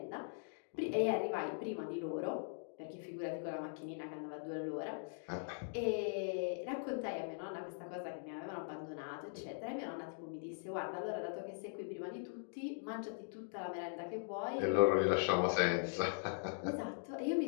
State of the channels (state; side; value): silent; right; digital silence